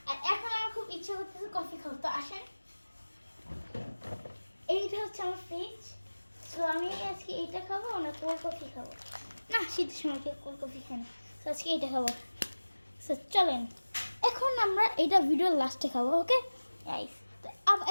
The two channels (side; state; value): both; inverted; correlation -1.00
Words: আর এখন আমার খুব ইচ্ছে করতেছে কফি খাবো। তো আসেন, এইটা হচ্ছে আমার ফ্রিজ। সো আমি আজকে এইটা খাবো না কোল্ড কফি খাবো না, শীতের সময় কেউ কোল্ড কফি খাই না। সো আজকে এইটা খাবো। সো চলেন এখন আমরা এইটা ভিডিওর লাস্টে খাবো। ওকে গাইস, তো